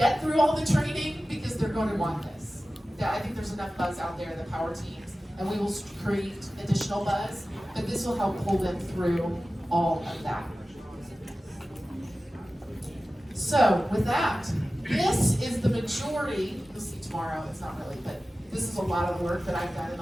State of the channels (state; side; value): normal; both; correlation 0.96